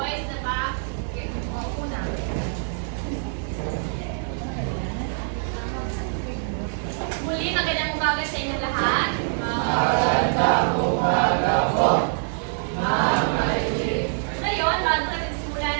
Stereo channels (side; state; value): left; silent; digital silence